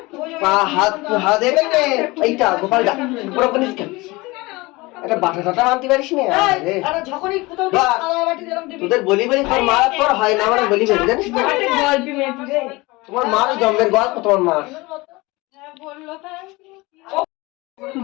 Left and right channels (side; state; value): right; quieter; 22.7 dB